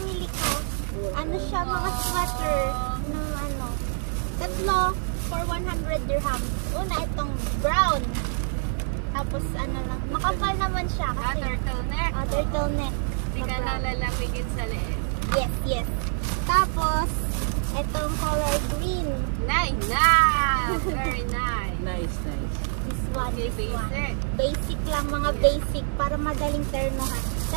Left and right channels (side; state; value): left; silent; 61 dB below the other